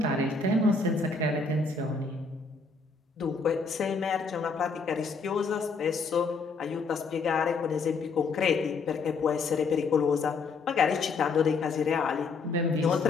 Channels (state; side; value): quieter; right; 4.5 dB